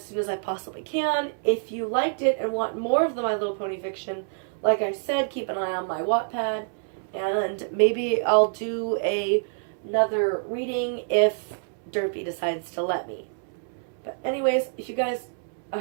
soon as I possibly can. If you liked it and want more of the My Little Pony fiction, like I said, keep an eye on my Wattpad. And maybe I'll do another reading if Derpy decides to let me. But anyways, I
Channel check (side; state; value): left; silent; 60 dB below the other